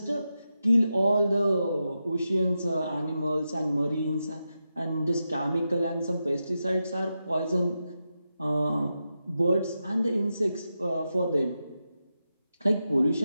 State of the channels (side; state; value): both; inverted; correlation -0.89